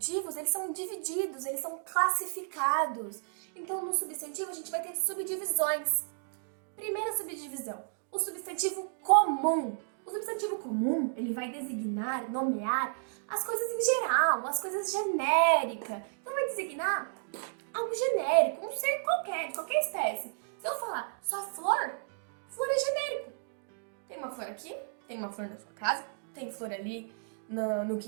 eles são divididos, eles são classificados. Então, no substantivo, a gente vai ter subdivisões. Primeira subdivisão, o substantivo comum. O substantivo comum, ele vai designar, nomear as coisas em geral, as coisas genéricas. Então, vai designar algo genérico, um ser qualquer, de qualquer espécie. Se eu falar só flor, flor é genérico. Tem uma flor aqui, tem uma flor na sua casa, tem flor ali no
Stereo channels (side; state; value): left; silent; digital silence